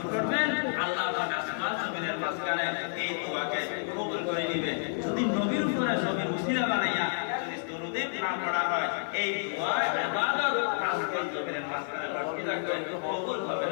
পড়বেন, আল্লাহ পাক আসমান জমিনের মাঝখানে এই দোয়াকে কবুল করে নেবে। যদি নবীর উপরে নবীর উসিলা বানাইয়া যদি দরুদে না পড়া হয়, এই দোয়া ইবাদত আসমান জমিনের মাঝখানে লটকে থাকবে, কবুল হবে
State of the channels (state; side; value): silent; right; 57 dB below the other